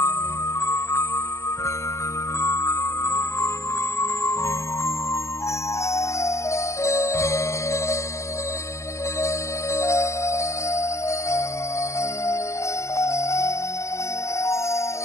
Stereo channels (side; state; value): right; late; 0.14 ms